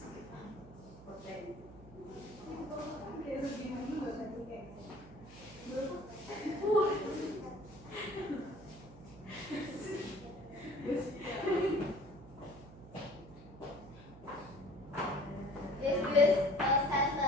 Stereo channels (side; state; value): right; noise; hum, 18 dB below the sound